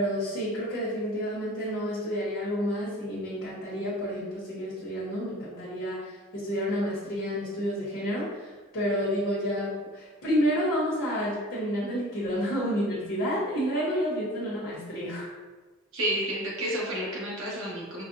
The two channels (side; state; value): both; normal; correlation 0.42